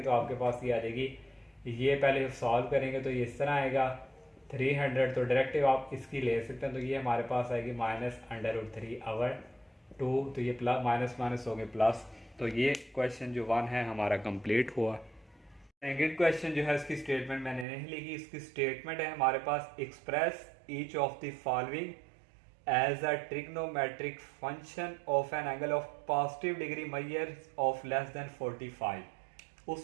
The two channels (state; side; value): drops out; left; at 17.7 s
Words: तो आपके पास ये आ जाएगी। ये पहले सॉल्व करेंगे तो ये इस तरह आएगा 300। तो डायरेक्टिव आप इसकी ले सकते हैं। तो ये हमारे पास आएगी -√3/2। तो ये प्लस माइनस माइनस हो गए प्लस। तो ये क्वेश्चन जो 1 है हमारा कंप्लीट हुआ। सेकंड क्वेश्चन जो है इसकी स्टेटमेंट मैंने नहीं लिखी। इसकी स्टेटमेंट है हमारे पास express each of the following as a trigonometric function of an angle of positive degree measure of less than 45।